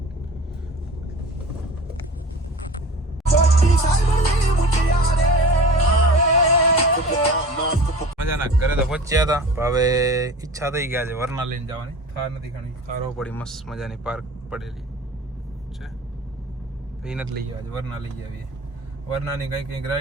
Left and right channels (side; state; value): both; normal; correlation 0.39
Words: મજાના ઘરે તો પહોંચ્યા હતા હવે ઈચ્છા થઈ ગયા છે વરના લઈને જવાની થાર નથી ઘણી થારો પડી મસ્ત મજાની પાર્ક પડેલી છે એ નથી લઈ ગયા વરના લઈ આવીએ વરનાની કઈ